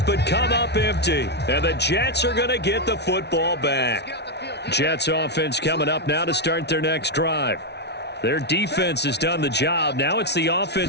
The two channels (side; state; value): right; late; 0.50 ms